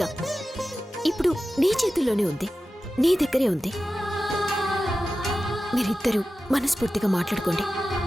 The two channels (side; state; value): both; normal; correlation 0.94